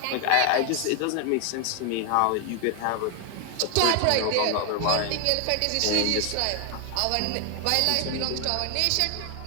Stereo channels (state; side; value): different; both; correlation 0.00